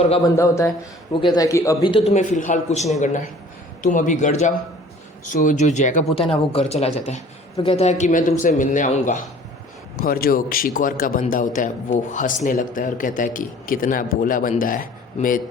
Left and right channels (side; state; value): both; normal; correlation 0.50